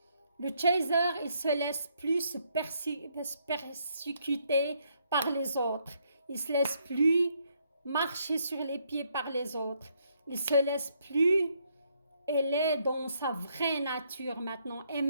Le chaser, il se laisse plus se persécuter par les autres. Il se laisse plus marcher sur les pieds par les autres. Il se laisse plus, elle est dans sa vraie nature maintenant. Et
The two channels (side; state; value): both; inverted; correlation -0.72